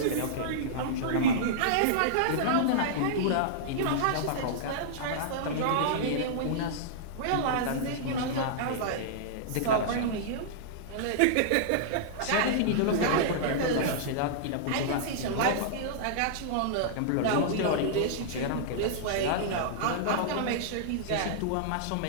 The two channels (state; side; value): different; both; correlation -0.02